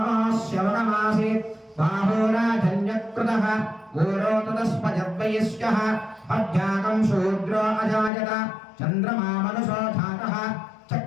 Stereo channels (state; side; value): drops out; right; at 8.1 s